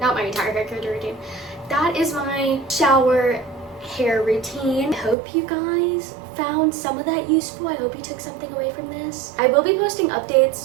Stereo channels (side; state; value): left; drops out; at 5.2 s